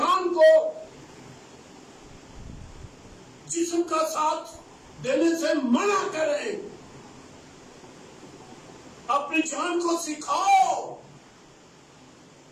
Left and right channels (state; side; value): identical; both; correlation 1.00